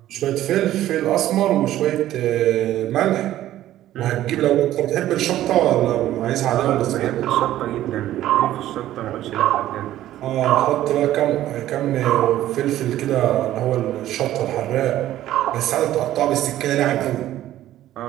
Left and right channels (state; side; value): quieter; left; 13.5 dB